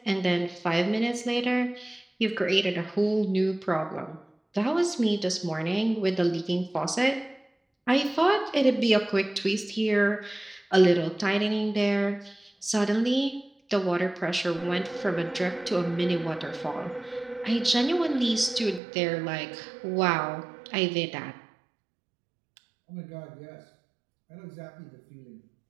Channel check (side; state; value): left; drops out; at 18.8 s